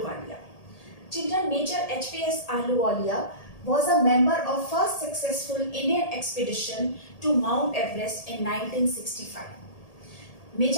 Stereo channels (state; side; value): late; right; 1.8 ms